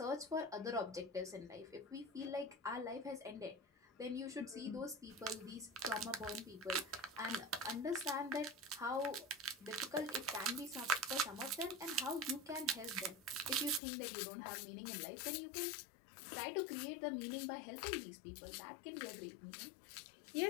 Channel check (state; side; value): drops out; right; at 13.8 s